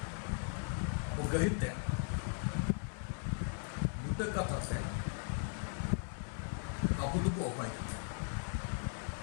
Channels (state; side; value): silent; right; 52 dB below the other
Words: ᱟᱵᱚ ᱜᱟᱹᱦᱤᱨ ᱛᱮ ᱵᱩᱴᱟᱹ ᱠᱟᱛᱷᱟ ᱛᱮ ᱟᱵᱚ ᱫᱚᱵᱚ ᱚᱠᱚᱭ ᱠᱟᱱᱟ?